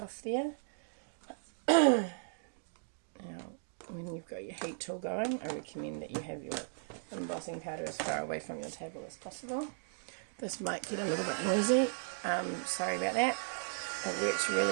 there. Now when you've got your heat tool going, I recommend that you have your embossing powder as far away from your table as possible. This might get a little bit noisy, sorry about that. It works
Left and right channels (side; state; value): left; silent; digital silence